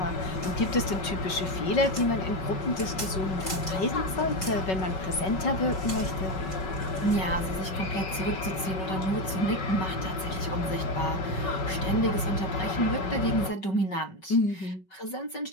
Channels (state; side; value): late; right; 5.3 ms